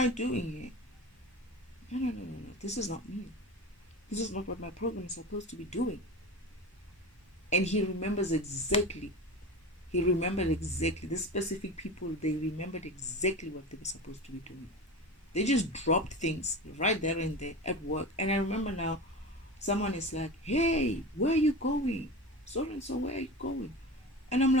doing here? No. This is not me. This is not what my program is supposed to be doing. And he remembers exactly He remembered exactly, the specific people, they remembered exactly what they were supposed to be doing. They just dropped things right there and there at work. And I remember now, someone is like, hey, where are you going? So and so, where are you going? And I'm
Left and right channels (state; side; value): normal; both; correlation 0.29